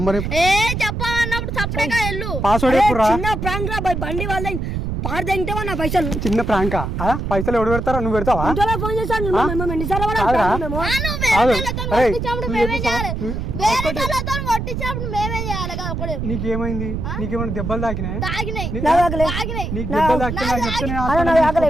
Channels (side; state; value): right; noise; rumble, 3 dB below the sound